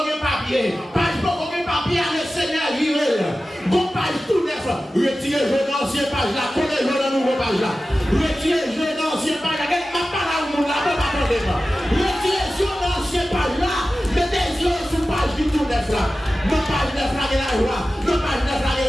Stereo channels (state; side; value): normal; both; correlation 0.95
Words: de papier. Pas de papier à le Seigneur viré. Bon page tout neuf. Retirez jeune ancien page là. Connaissez le nouveau page là. Retirez jeune ancien page là. Ma parole nous là. Pas attendez-moi. Retirez jeune ancien page là. Mettez les yeux sur page du tout neuf là. Nos pages neuf là de la joie. Nos pages neuf là